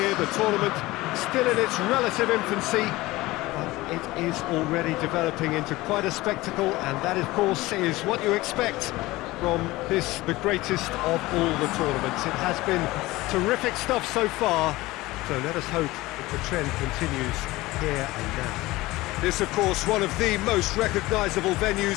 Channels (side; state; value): right; quieter; 19.4 dB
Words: The tournament still in its relative infancy, but it is already developing into quite a spectacle, and that, of course, is what you expect from this, the greatest of all the tournaments. It has been terrific stuff so far, so let us hope that the trend continues here and now. This, of course, one of the most recognisable